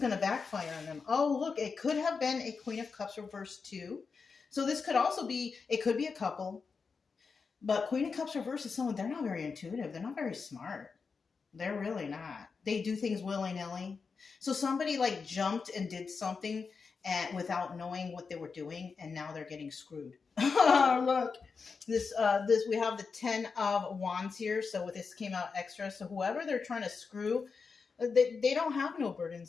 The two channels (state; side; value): quieter; right; 5.1 dB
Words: to backfire on them. Oh, look, it could have been a Queen of Cups reverse too. So this could also be, it could be a couple. But Queen of Cups reverse is someone, they're not very intuitive. They're not very smart. They're really not. They do things willy-nilly. So somebody like jumped and did something without knowing what they were doing, and now they're getting screwed. Look, this we have the 10 of Wands here. So this came out extra. So whoever they're trying to screw, they don't have no